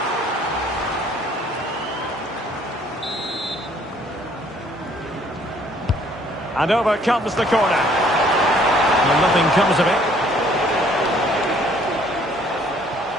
And over comes the corner. Well, nothing comes of it.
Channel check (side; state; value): both; normal; correlation 0.61